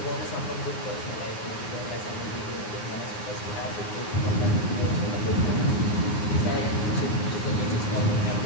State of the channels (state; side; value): late; right; 9.6 ms